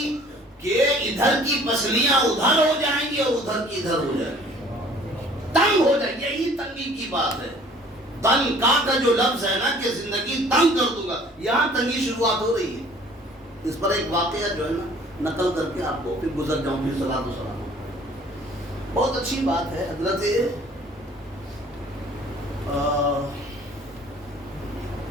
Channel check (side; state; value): both; normal; correlation 0.53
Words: کہ ادھر کی پسلیاں ادھر ہو جائیں گی اور ادھر کی ادھر ہو جائیں گی، تنگ ہو جائے گی. یہی تنگی کی بات ہے. تنگ کا جو لفظ ہے نا کہ زندگی تنگ کر دوں گا، یہاں تنگی شروعات ہو رہی ہے. اس پر ایک واقعہ جو ہے نا نقل کر کے آپ کو پھر گزر جاؤں، پھر صلاۃ و سلام. بہت اچھی بات ہے.